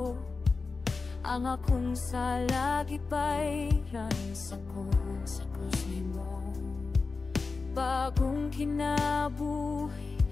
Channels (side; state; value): right; quieter; 4.2 dB